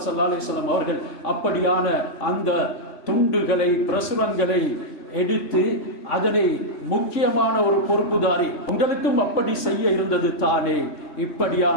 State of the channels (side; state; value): right; late; 3.6 ms